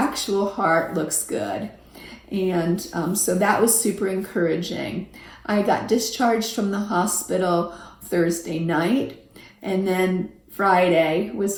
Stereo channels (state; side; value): identical; both; correlation 1.00